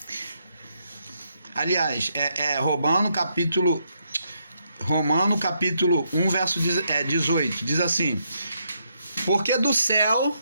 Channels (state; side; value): inverted; both; correlation -0.77